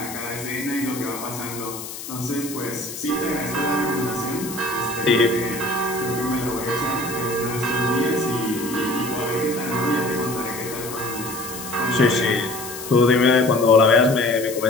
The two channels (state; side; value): noise; left; hiss, 10 dB below the sound